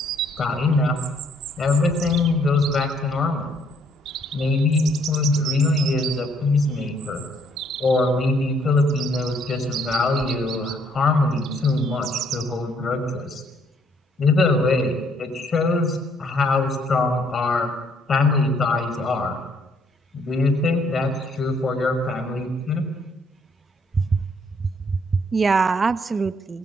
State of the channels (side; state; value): both; normal; correlation 0.67